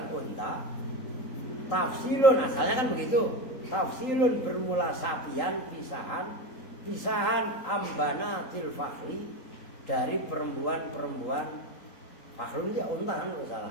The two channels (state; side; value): late; right; 3.8 ms